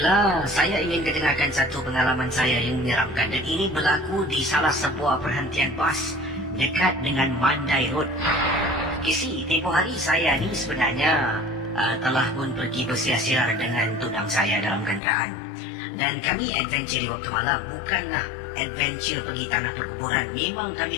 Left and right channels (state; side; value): drops out; right; at 15.0 s